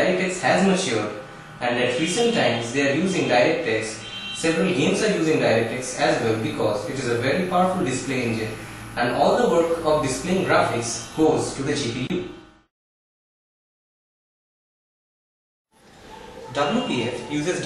has matured, and at recent times they are using DirectX. Several games are using DirectX as well because it is a very powerful display engine and all the work of displaying graphics goes to the GPU. WPF uses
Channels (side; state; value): both; identical; correlation 1.00